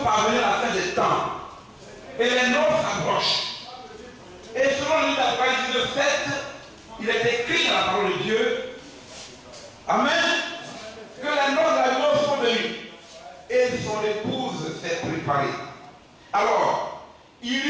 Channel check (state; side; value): identical; both; correlation 1.00